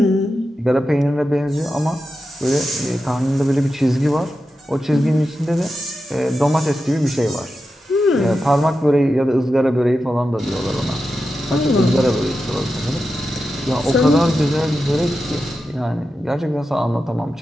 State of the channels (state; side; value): normal; both; correlation 0.90